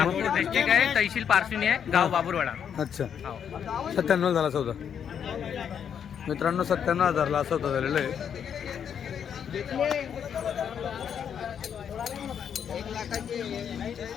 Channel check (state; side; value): quieter; right; 8.1 dB